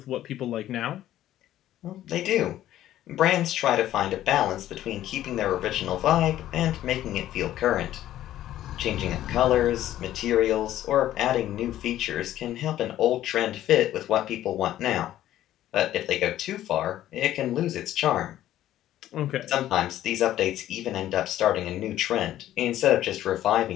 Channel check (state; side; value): quieter; right; 13.0 dB